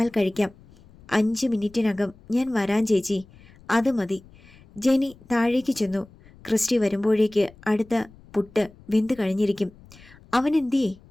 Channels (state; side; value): noise; left; rumble, 24 dB below the sound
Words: കഴിക്കാം. 5 മിനിറ്റിനകം ഞാൻ വരാൻ ചേച്ചി. അത് മതി. ജെനി താഴേക്ക് ചെന്നു. ക്രിസ്റ്റി വരുമ്പോഴേക്ക് അടുത്ത പുട്ട് വെന്ത് കഴിഞ്ഞിരിക്കും. അവൻ എന്തിയേ?